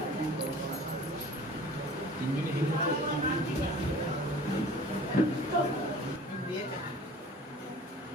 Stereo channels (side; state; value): both; normal; correlation 0.45